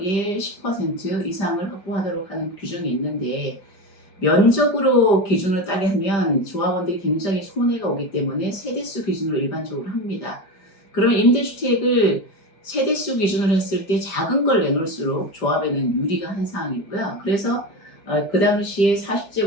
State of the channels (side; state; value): right; late; 5.0 ms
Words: 10% 이상을 확보하도록 하는 규정이 있는데 면적으로 기준을 따게 하면 조합원들이 굉장히 손해가 오기 때문에 세대수 기준으로 일반적으로 합니다. 그러면 임대주택을 세대수 기준으로 했을 때 작은 걸 내놓을수록 조합에는 유리가 한 상황이고요. 그래서 그 당시에